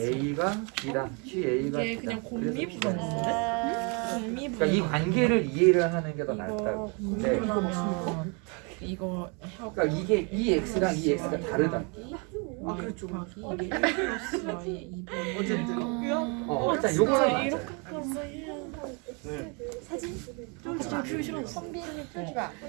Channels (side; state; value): left; quieter; 33.5 dB